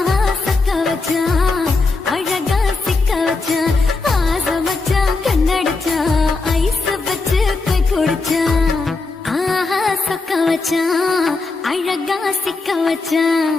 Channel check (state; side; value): quieter; right; 3.7 dB